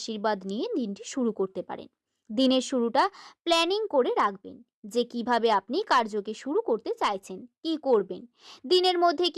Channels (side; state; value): both; identical; correlation 1.00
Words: নিয়ে দিনটি শুরু করতে পারেন। দিনের শুরুটা প্ল্যানিং করে রাখবেন যে কিভাবে আপনি কার্যকে শুরু করতে চাইছেন, কি করবেন, দিনের মধ্যে